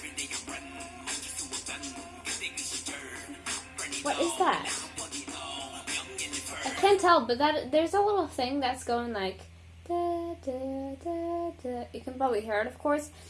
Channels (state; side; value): identical; both; correlation 1.00